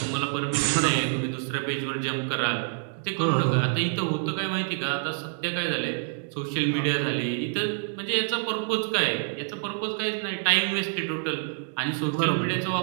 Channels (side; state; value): left; silent; 58 dB below the other